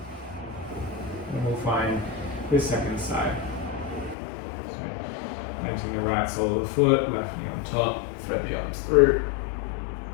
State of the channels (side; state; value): right; drops out; at 4.2 s